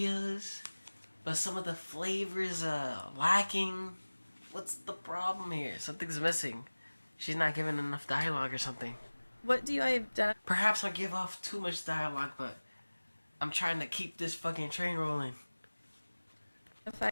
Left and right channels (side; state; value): both; inverted; correlation -1.00